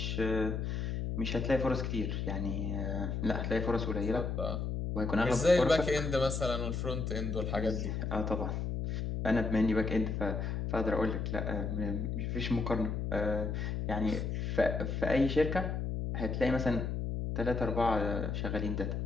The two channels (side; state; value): left; noise; hum, 2 dB below the sound